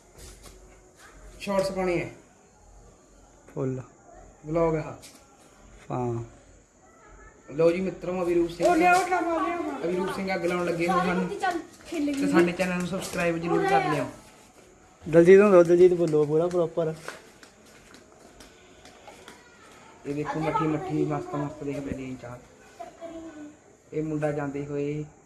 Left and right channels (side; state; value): both; identical; correlation 1.00